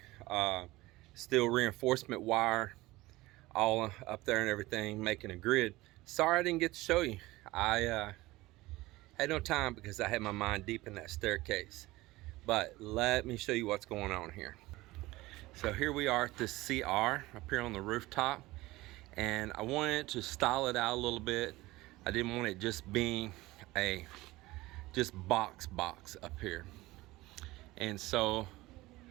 steel reinforcement wire all up there and everything, making a grid. Sorry I didn't get to show you. I had no time because I had my mind deep in that staircase. But let me show you what's going on here. So here we are at this CR up here on the rooftop, and I wanted to style it out a little bit. I didn't want it just being a box up here. And so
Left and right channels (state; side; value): quieter; left; 19.3 dB